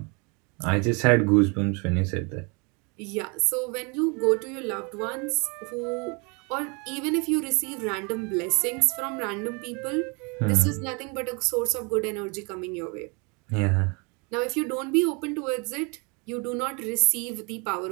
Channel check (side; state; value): left; quieter; 31.9 dB